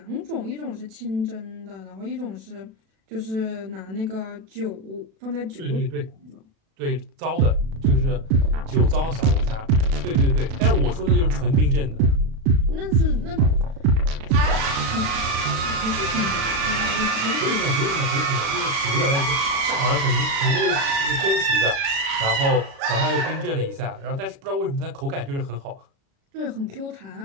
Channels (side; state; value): left; late; 36 ms